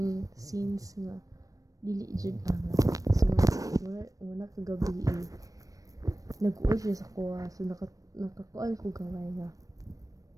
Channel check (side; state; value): left; late; 0.16 ms